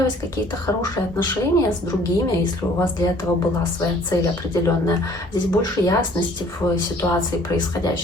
какие-то хорошие отношения с другими, если у вас для этого была своя цель определенная. Здесь больше ясности в ситуации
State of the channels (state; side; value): normal; both; correlation 0.56